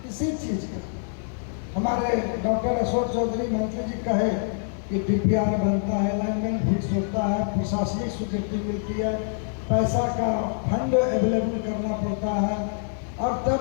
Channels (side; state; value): right; silent; digital silence